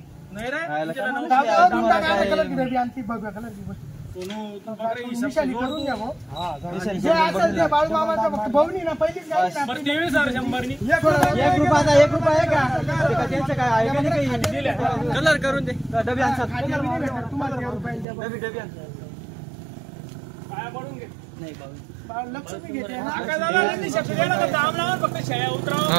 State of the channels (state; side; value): drops out; left; at 18.1 s